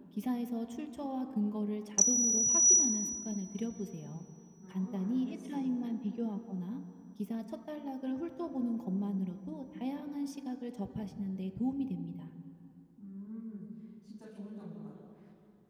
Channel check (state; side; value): identical; both; correlation 1.00